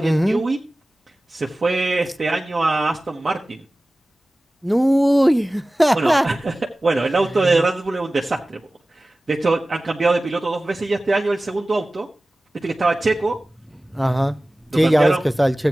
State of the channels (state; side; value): normal; both; correlation 0.97